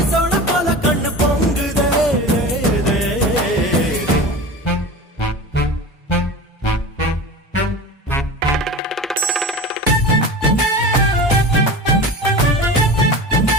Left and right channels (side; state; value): both; normal; correlation 0.32